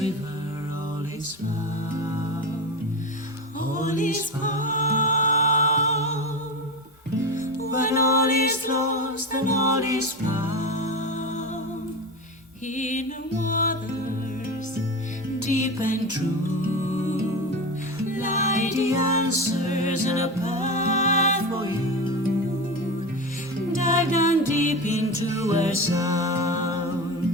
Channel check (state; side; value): normal; both; correlation 0.22